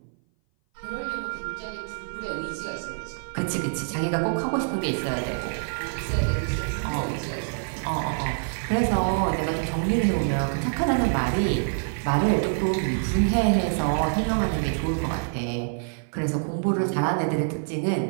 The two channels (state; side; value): silent; left; 57 dB below the other